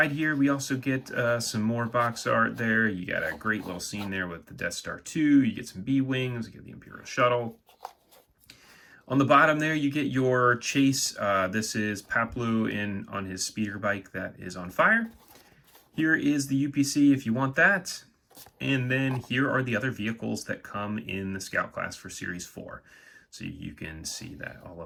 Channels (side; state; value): both; identical; correlation 1.00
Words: here, we also get some more box art there. You got a great little scene there with the Death Star 2. You get some B-Wings. You get the Imperial Shuttle. On the bottom there, you get your chase. This is Paplu on his speeder bike that is on fire. Here is the UPC if you want that. And then here are the other vehicles that come in the Scout Class for Series 4. So you can see that, all